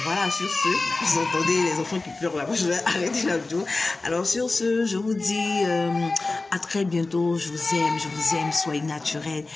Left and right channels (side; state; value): right; quieter; 3.4 dB